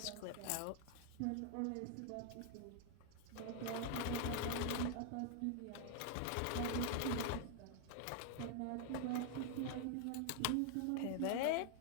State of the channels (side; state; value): both; different; correlation 0.00